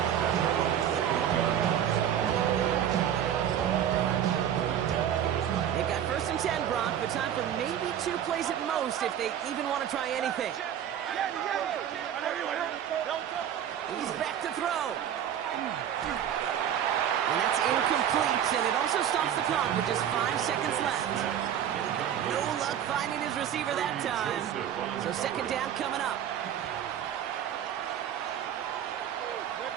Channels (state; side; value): quieter; left; 9.8 dB